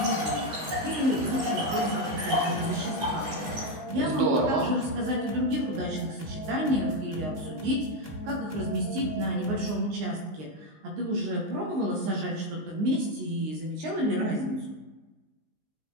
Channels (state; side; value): late; left; 19 ms